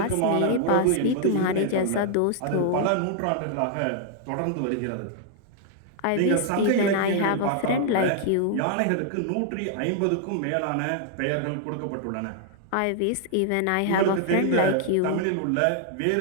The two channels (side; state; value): both; different; correlation 0.00